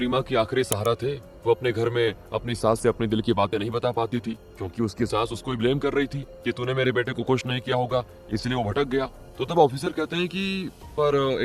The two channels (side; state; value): both; identical; correlation 1.00